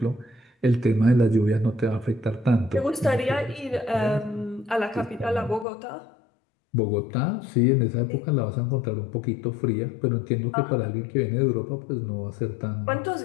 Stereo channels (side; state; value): right; drops out; at 5.7 s